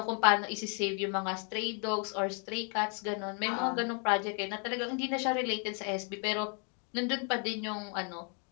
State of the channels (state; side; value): quieter; right; 38.4 dB